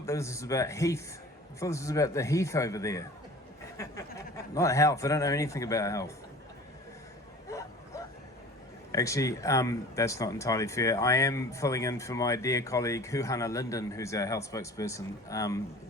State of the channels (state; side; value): normal; both; correlation 0.43